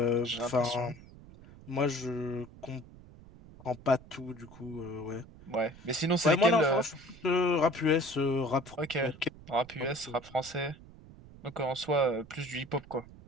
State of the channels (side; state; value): right; noise; rumble, 20 dB below the sound